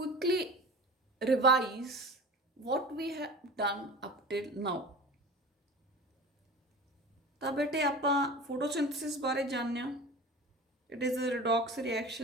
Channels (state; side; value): normal; both; correlation 0.35